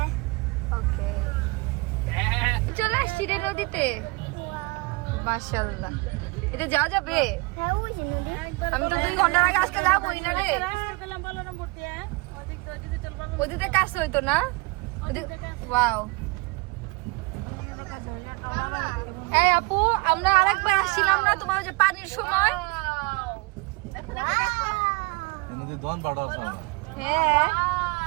ওকে চলে আসছি রে নদীতে মাশাআল্লাহ এটা যাওয়া যাবে আমি তো 2 ঘন্টার আগে আসতে যাবোই না রে ওদিকে কাছে হইতো না ওয়াও এই আপু আমরা আরেকবার আসছিলাম না তোমার যে পানির সময় হ্যাঁ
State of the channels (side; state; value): left; quieter; 25.9 dB